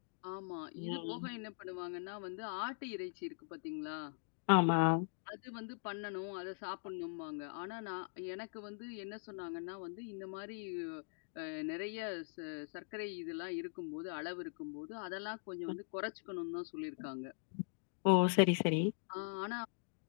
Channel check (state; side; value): silent; right; digital silence